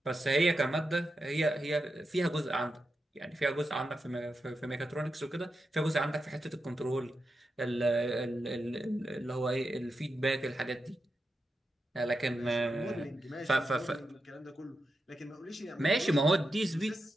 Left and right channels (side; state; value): both; normal; correlation 0.88